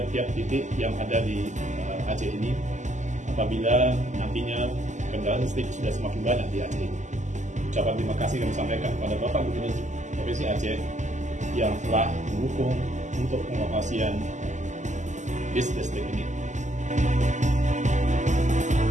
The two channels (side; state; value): left; late; 0.34 ms